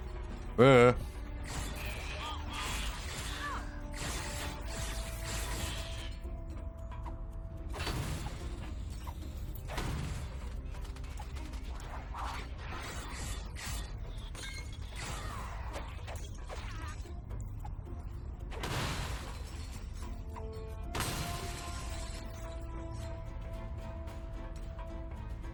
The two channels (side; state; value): both; identical; correlation 1.00